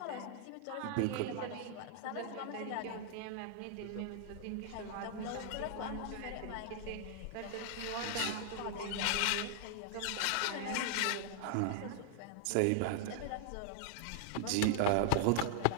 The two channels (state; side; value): different; both; correlation -0.01